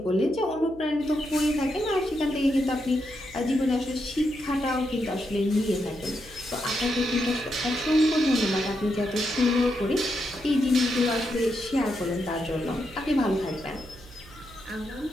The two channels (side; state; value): right; noise; hum, 20 dB below the sound